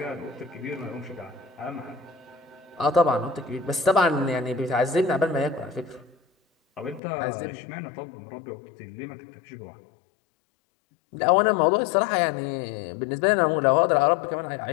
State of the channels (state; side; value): drops out; right; at 7.0 s